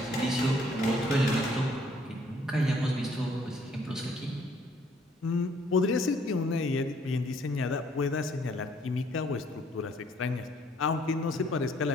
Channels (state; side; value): normal; both; correlation 0.63